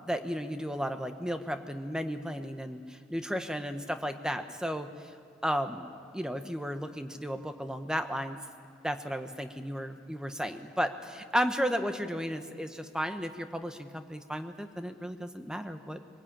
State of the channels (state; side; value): normal; both; correlation 0.88